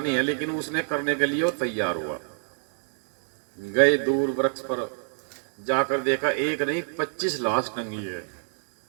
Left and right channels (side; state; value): left; silent; 60 dB below the other